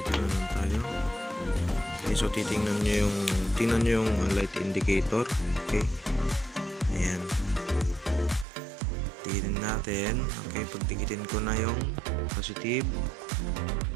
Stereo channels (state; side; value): drops out; left; at 8.5 s